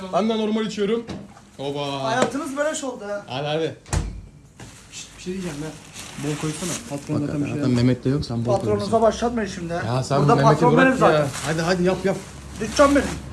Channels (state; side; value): identical; both; correlation 1.00